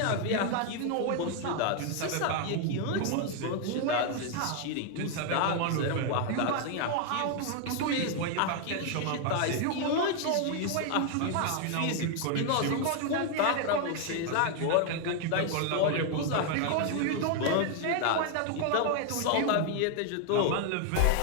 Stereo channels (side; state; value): both; different; correlation 0.00